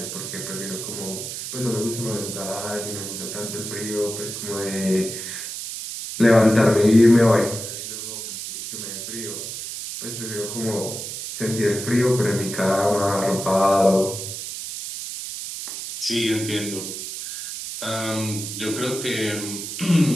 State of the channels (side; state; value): right; noise; hiss, 7 dB below the sound